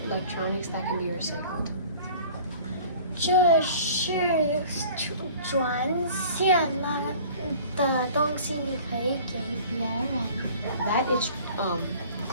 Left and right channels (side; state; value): both; inverted; correlation -0.47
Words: electronics that can be recycled. 这是转线了的东西，你可以给别人。That is